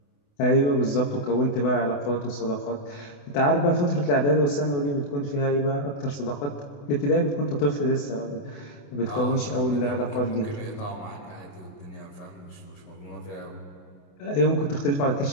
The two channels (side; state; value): right; late; 28 ms